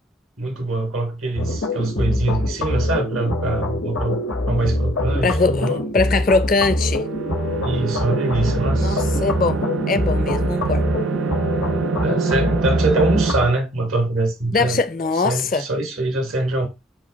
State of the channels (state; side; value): normal; both; correlation 0.57